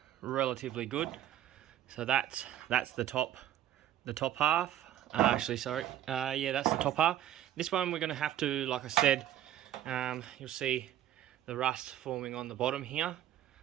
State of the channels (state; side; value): quieter; left; 11.9 dB